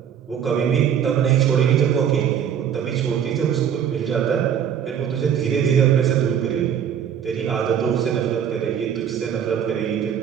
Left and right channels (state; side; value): quieter; left; 8.7 dB